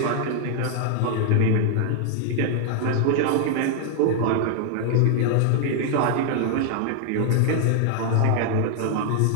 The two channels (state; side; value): different; both; correlation 0.00